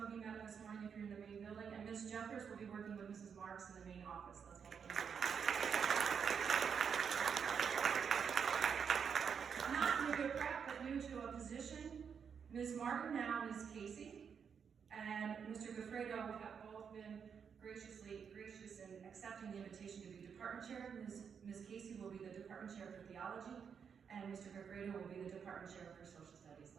of you met him this morning if you're in the main building, and Ms. Jeffers will be working with Mrs. Marks in the main office. Let's welcome them. Not new to prep, but new to a position. Ms. Martin now is Catie. And Mr. Goffredo have both been gracious in accepting the invitation to be department chair. Ms. Catie will be the department chair for Theology, and Mr. Goffredo will be the department chair for Social Studies.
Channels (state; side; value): quieter; left; 6.9 dB